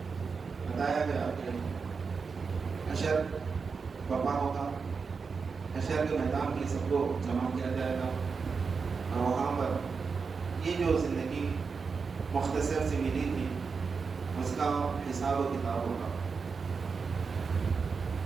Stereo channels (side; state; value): left; quieter; 5.2 dB